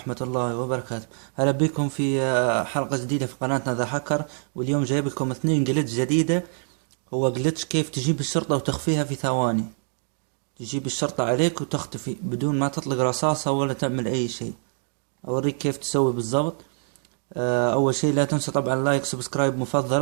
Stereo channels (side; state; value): left; silent; digital silence